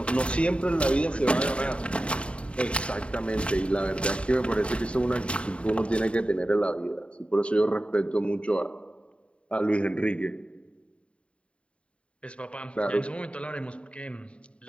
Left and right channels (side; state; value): right; late; 0.059 ms